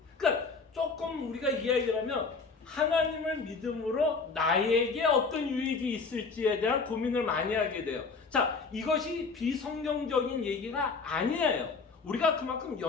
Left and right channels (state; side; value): quieter; right; 4.5 dB